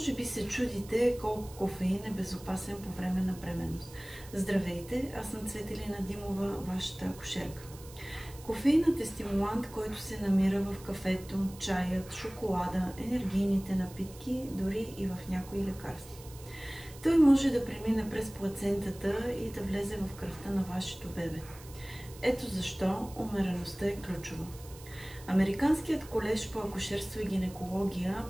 би се чудите колко кофеин е безопасен по време на бременност. Здравейте, аз съм Цветелина Димова, вашата акушерка. Кофеинът е стимулант, който се намира в кафето, чаят, шоколада, енергийните напитки, дори и в някои лекарства. Той може да премине през плацентата и да влезе в кръвта на вашето бебе. Ето защо умереността е ключова. Американският колеж по акушерство и гинекология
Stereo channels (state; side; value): noise; right; hiss, 19 dB below the sound